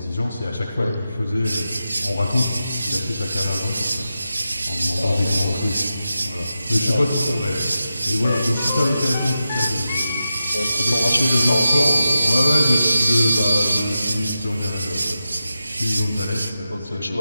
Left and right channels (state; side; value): inverted; both; correlation -0.91